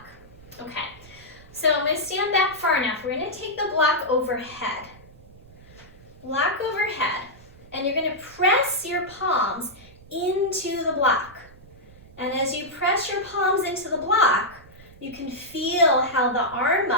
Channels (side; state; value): right; noise; rumble, 22 dB below the sound